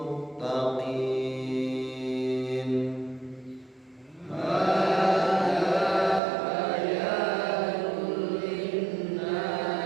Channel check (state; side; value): drops out; left; at 6.2 s